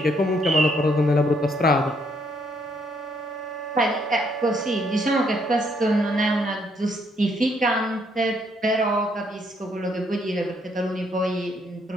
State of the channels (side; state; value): both; normal; correlation 0.71